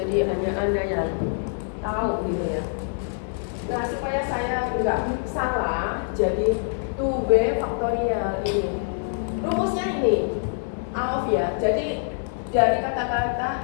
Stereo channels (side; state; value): right; silent; digital silence